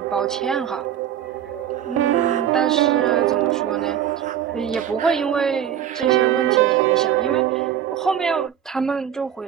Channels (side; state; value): left; quieter; 9.9 dB